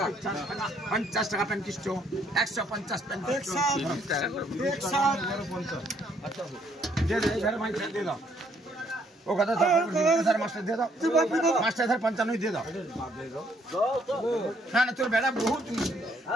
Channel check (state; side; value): normal; both; correlation 0.68